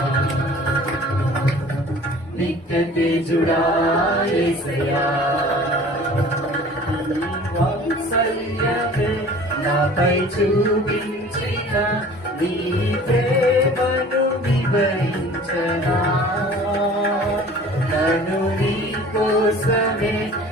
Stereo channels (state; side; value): normal; both; correlation 0.46